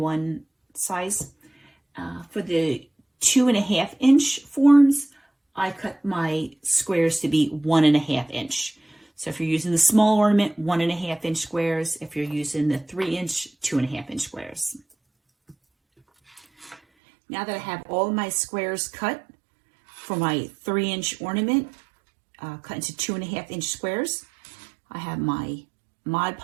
size. For the 2.5-inch forms, I cut my squares to be 1.5-inch. So if you're using the small ornament, 1.5-inch squares. If you're using the 3-inch, 2.5-inch squares. Now that I have all my squares cut, for my 3-inch ornament, cut into 2.5-inch squares, I have my Mod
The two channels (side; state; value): left; drops out; at 16.8 s